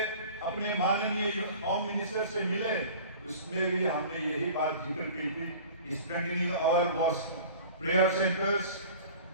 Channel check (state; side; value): inverted; both; correlation -0.42